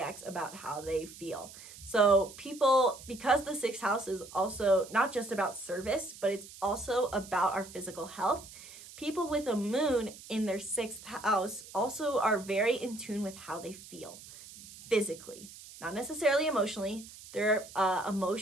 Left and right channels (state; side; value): noise; right; hiss, 17 dB below the sound